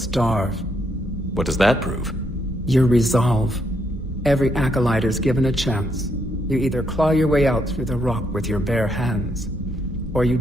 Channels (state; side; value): normal; both; correlation 0.76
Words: What does that prove? Your resolve. Every acolyte is given a chance. You either claw your way out through the rock with your bare hands, or you